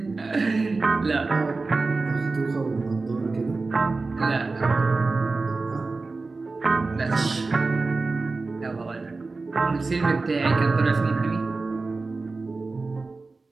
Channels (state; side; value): quieter; left; 3.7 dB